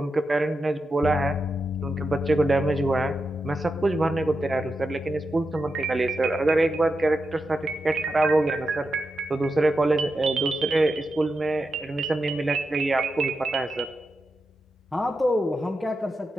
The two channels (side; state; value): both; normal; correlation 0.88